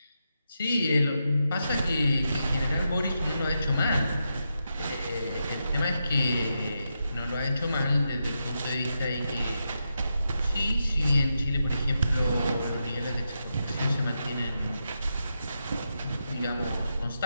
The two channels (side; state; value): both; inverted; correlation -0.85